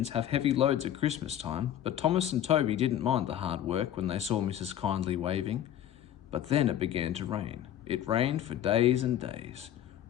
have heavy loads at Christmas time, but Thomas and Toby didn't mind the hard work when they saw Mrs. Kindly waving. But then it began to rain. It rained for days and days.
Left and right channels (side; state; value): right; quieter; 11.1 dB